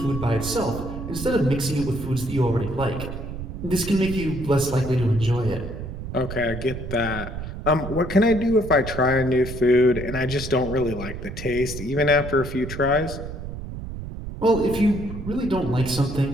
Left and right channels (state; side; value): noise; right; rumble, 8 dB below the sound